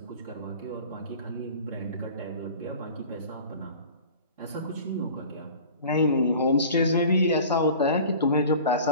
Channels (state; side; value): inverted; both; correlation -0.41